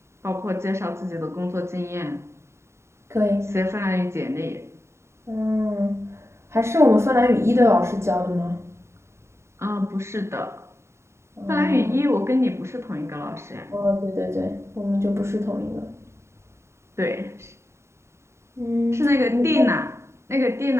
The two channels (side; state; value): left; late; 0.13 ms